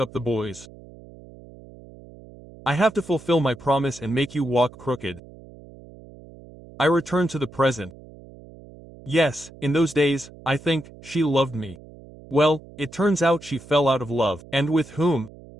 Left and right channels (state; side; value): noise; right; hum, 20 dB below the sound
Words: up the boys. I have to fulfill my promise and make you walk crooked. I returned to the present. Yes, in those days, I think, she loved me. Well, it turns out she fell out of love, and with whom?